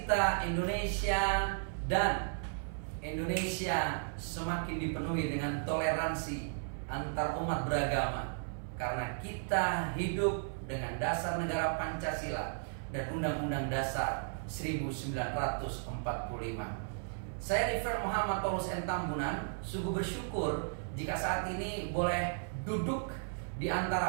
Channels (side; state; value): left; silent; 54 dB below the other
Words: Indonesia, dan Indonesia semakin dipenuhi dengan toleransi antar umat beragama, karena kita hidup dengan dasar negara Pancasila dan Undang-Undang Dasar 1945. Saya Reverend Muhammad Paulus N. Tambunan, sungguh bersyukur jika saat ini boleh duduk di